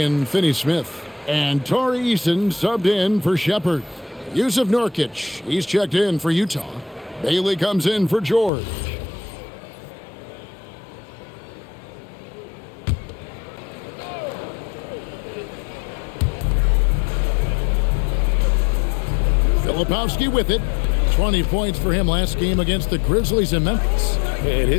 Finney-Smith. And Tari Eason subbed in for Shepherd. Yusuf Nurkic, he's checked in for Utah. Bailey comes in for George. Filipowski with it. 20 points for him last game against the Grizzlies in Memphis. And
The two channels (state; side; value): drops out; right; at 8.5 s